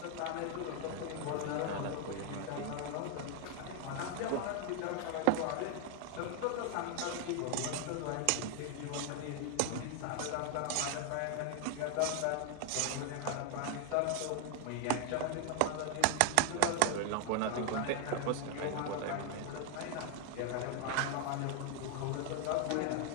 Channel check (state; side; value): different; both; correlation 0.00